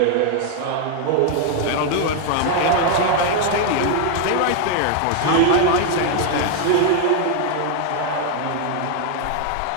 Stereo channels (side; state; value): both; different; correlation 0.00